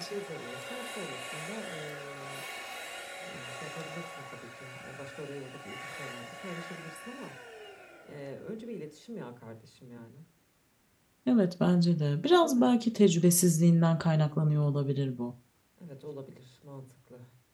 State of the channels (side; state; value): both; identical; correlation 1.00